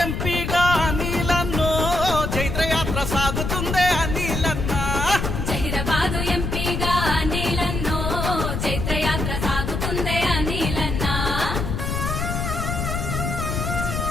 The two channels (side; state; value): left; noise; rumble, 2 dB below the sound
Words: ఎంపీగా అనిలన్నో జైత్రయాత్ర సాగుతుందే అనిలన్న. జహీరాబాదు ఎంపీగా అనిలన్నో జైత్రయాత్ర సాగుతుందే అనిలన్న.